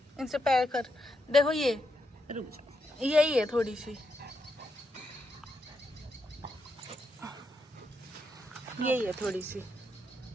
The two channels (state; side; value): normal; both; correlation 0.83